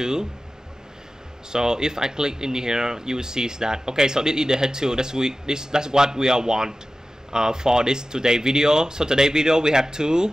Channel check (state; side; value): normal; both; correlation 0.95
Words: So if I click in here, you will see that okay. So this is the H2. That's what we want for this today video. So today video we have 2.